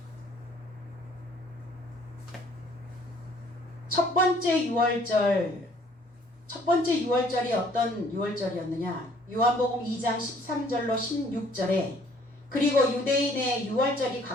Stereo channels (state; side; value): normal; both; correlation 0.59